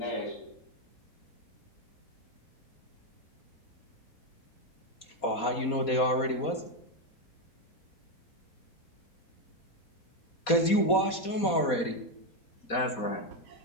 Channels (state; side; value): late; right; 4.2 ms